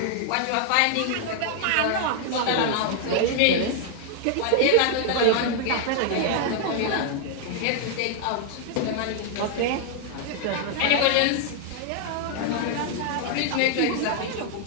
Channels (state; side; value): different; both; correlation 0.00